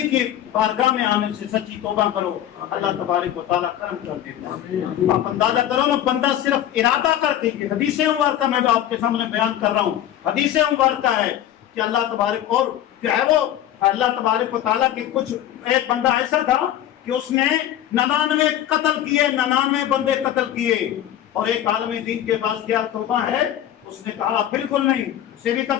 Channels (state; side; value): quieter; right; 11.7 dB